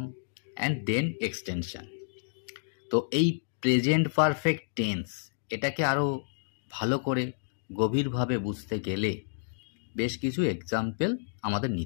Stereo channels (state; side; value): silent; right; digital silence